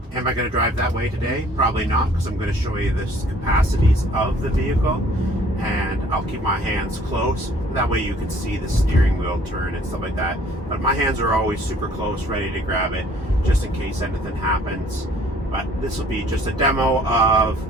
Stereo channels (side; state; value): both; normal; correlation 0.57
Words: Am I going to drive that way today? Probably not, because I'm going to show you the capacities of the vehicle, and I'll keep my hands close. That way you can see the steering wheel turn and stuff like that. But my hands are always super close, ready to grab it, just in case anything happens. But this will be just a demo of